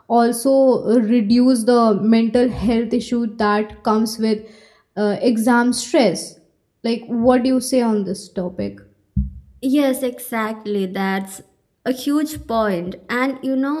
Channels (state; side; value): identical; both; correlation 1.00